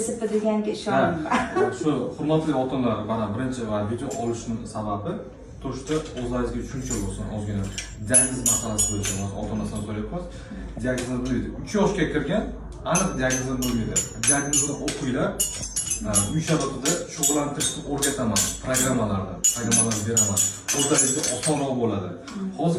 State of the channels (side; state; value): both; identical; correlation 1.00